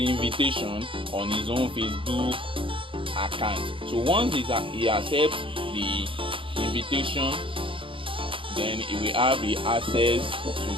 invitation on his own Facebook account. So once he accepts the invitation, then he will have the access to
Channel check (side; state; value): left; late; 0.25 ms